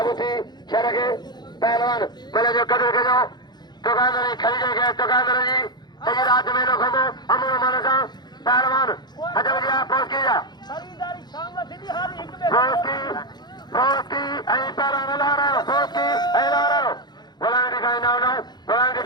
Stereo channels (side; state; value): right; late; 0.21 ms